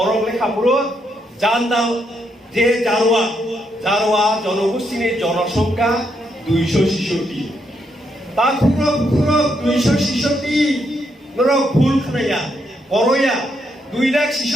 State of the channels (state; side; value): normal; both; correlation 0.78